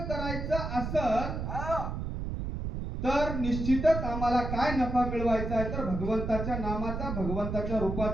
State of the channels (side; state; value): right; noise; rumble, 4 dB below the sound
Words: करायचं असत तर निश्चितच आम्हाला काय नफा मिळवायचा आहे, तर भगवंताच्या नामाचा, भगवंताच्या